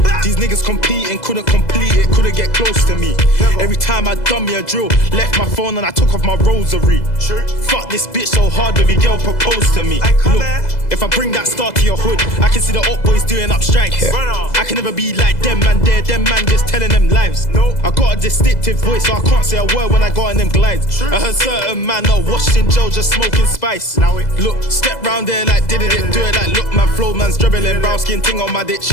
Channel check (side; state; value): right; late; 2.0 ms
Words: These niggas competing, couldn't complete it, couldn't get close to me. Every time I done me a drill, left my phone and I took off my rosary. Fuck this bitch so hard, baby girl proposed to me. Look, if I bring that star to your hood, I can see the up boys doing up strikes. I can never be like them man there, them man just telling them lies. I got a distinctive voice, so I can't say a word when I go on them glides. I heard certain man are washed in jail just smoking spice. Look, step round there like did it, do it like look man, flow man's dribbling. Brown skin ting on my dick,